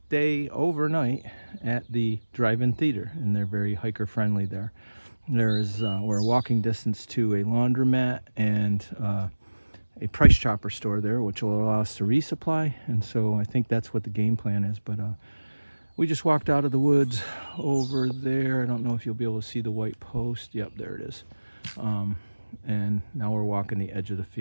overnight at the drive-in theater, and they're very hiker friendly there. We're a walking distance to a laundromat and a price chopper store there, which will allow us to resupply, and so I think that's what the game plan is. But we just walked out of the woods over there. I don't know if you'll be able to see the white post. Yep, there it is. And now we're walking the edge of the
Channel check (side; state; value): both; inverted; correlation -1.00